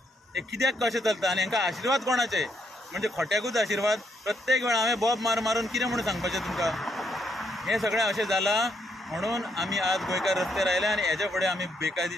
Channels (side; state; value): both; normal; correlation 0.75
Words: हे कित्याक कशें चलता आनी हांकां आशिर्वाद कोणाचे म्हणजे खोट्याकूच आशिर्वाद प्रत्येक वेळा हांवें बॉब मारून कितें म्हणून सांगपाचें तुमकां हें सगळें अशें जालां म्हणून आमी आज गोंयकार रस्त्यार आयले आनी हेच्या फुडें आमी